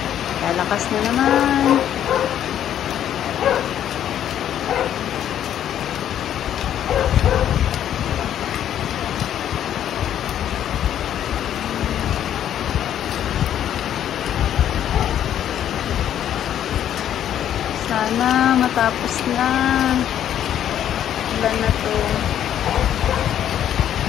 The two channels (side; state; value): right; quieter; 10.5 dB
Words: Lalakas na naman. Sana matapos na. Ulan na to.